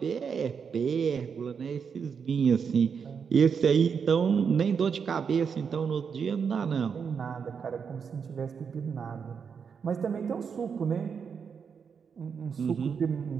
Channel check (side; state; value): left; quieter; 6.4 dB